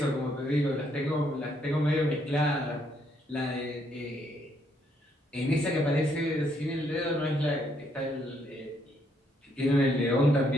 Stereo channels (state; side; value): normal; both; correlation 0.72